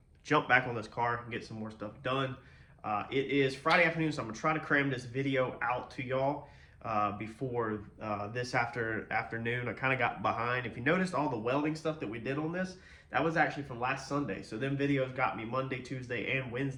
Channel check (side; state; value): both; identical; correlation 1.00